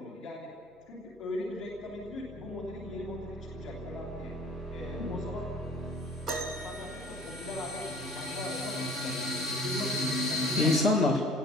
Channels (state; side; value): normal; both; correlation 0.49